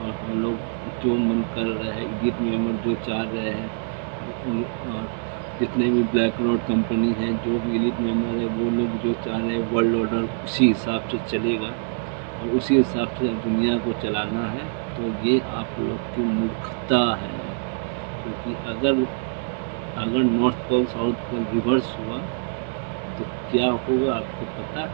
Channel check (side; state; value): left; silent; 62 dB below the other